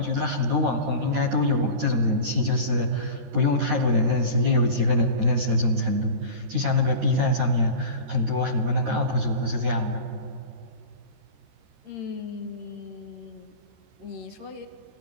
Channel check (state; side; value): late; left; 13 ms